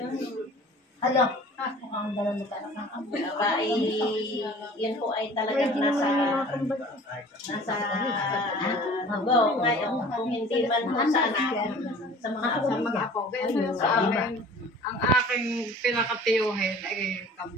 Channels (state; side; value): normal; both; correlation 0.46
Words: Hello. Aba, yan po ay talagang nasa go. Ngayon, kung hindi man po sa anak, sa mga apo. Ganyan sa akin, ang aking pinakatiyuhin ay